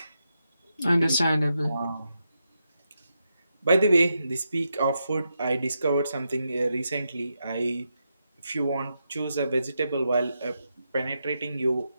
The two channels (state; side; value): inverted; both; correlation -0.85